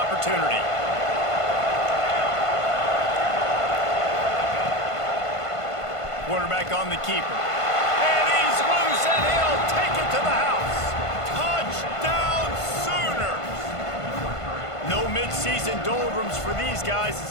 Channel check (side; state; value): right; late; 1.5 ms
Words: Quarterback on the keeper. And he's loose, and he'll take it to the house. Touchdown Sooners! No mid-season doldrums for these guys as